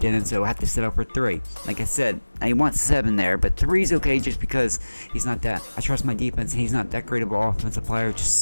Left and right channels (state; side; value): inverted; both; correlation -1.00